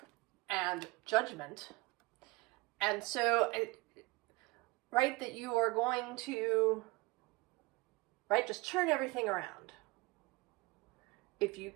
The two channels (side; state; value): left; quieter; 23.1 dB